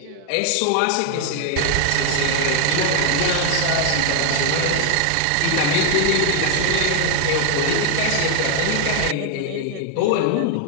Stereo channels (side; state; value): both; different; correlation 0.00